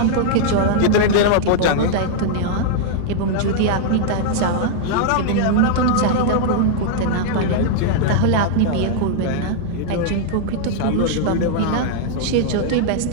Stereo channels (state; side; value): different; both; correlation -0.01